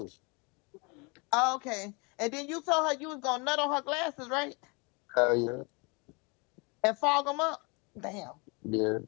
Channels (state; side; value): quieter; right; 30.2 dB